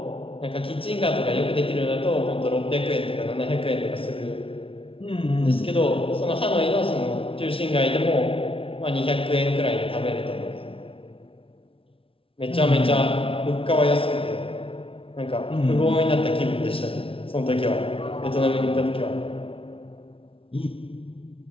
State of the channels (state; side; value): late; right; 0.26 ms